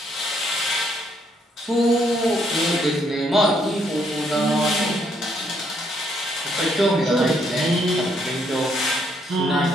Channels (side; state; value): both; normal; correlation 0.72